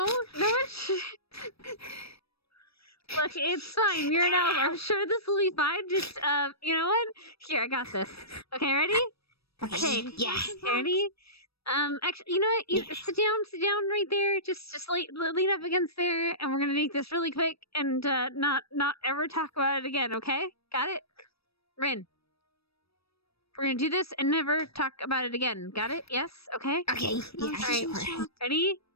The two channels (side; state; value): right; late; 0.77 ms